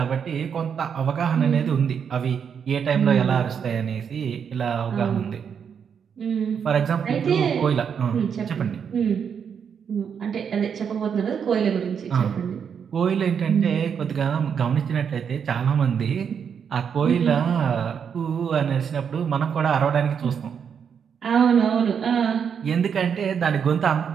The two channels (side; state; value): left; quieter; 7.2 dB